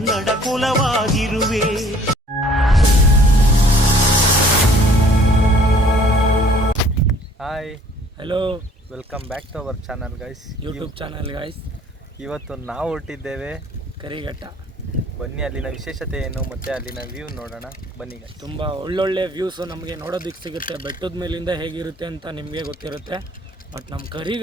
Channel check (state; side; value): normal; both; correlation 0.56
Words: ಕುಲವಾಗಿರುವೆ. Hi, hello, welcome back to our channel guys, YouTube channel guys. ಇವತ್ತು ನಾವು ಹೊರಟಿದ್ದೇವೆ ಕರಿಘಟ್ಟ. ಬನ್ನಿ ಅಲ್ಲಿನ ವಿಶೇಷತೆ ಏನು ಮತ್ತು ಅಲ್ಲಿನ ವ್ಯೂ ನೋಡೋಣ. ಬನ್ನಿ ಗೈಸ್. ತುಂಬ ಒಳ್ಳೊಳ್ಳೆ ವ್ಯೂಸು ನಮಗೆ ನೋಡೋದಕ್ಕೆ ಸಿಗುತ್ತೆ. ಬೆಟ್ಟದ ಮೇಲಿಂದ ಹೇಗಿರುತ್ತೆ ಅಂತ ನಿಮಗೆ ಗೊತ್ತಿರುತ್ತೆ, ಬಟ್ ನಮ್ಮ